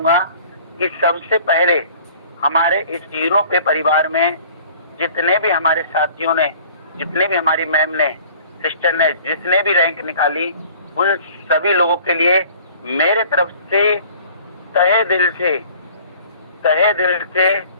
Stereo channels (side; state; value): both; inverted; correlation -0.50